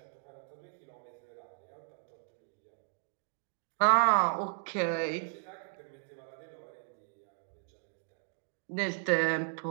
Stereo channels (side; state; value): left; silent; digital silence